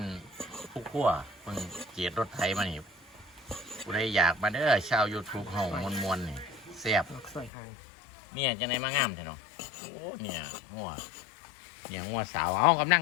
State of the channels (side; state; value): right; drops out; at 7.5 s